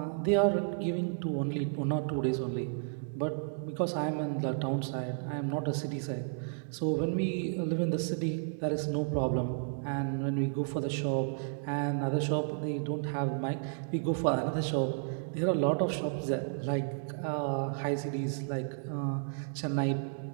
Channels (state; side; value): silent; left; digital silence